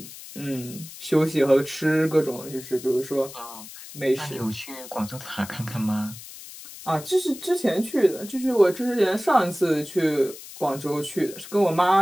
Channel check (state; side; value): noise; left; hiss, 15 dB below the sound